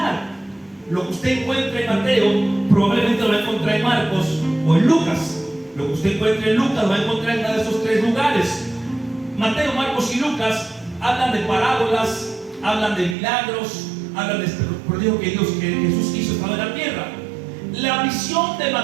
Lo que usted encuentra en Mateo probablemente lo va a encontrar en Marcos o en Lucas. Lo que usted encuentra en Lucas lo va a encontrar en uno de esos tres lugares. Mateo, Marcos y Lucas hablan de parábolas, hablan de milagros, hablan de este prodigio que Jesús hizo estando en la tierra. La visión de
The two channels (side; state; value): left; drops out; at 13.2 s